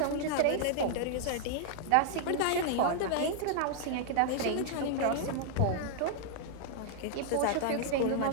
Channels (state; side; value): different; both; correlation -0.01